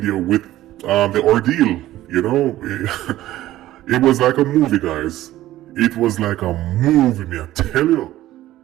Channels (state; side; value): quieter; left; 14.8 dB